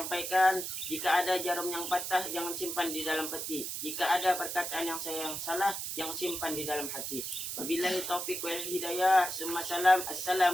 Jika ada jarum yang patah, jangan simpan di dalam peti. Jika ada perkataan yang saya yang salah, jangan simpan di dalam hati. Wabillahi taufiq wal hidayah.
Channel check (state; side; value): noise; right; hiss, 4 dB below the sound